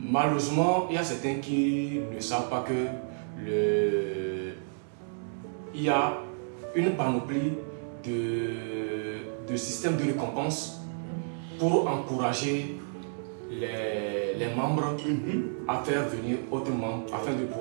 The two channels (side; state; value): left; silent; digital silence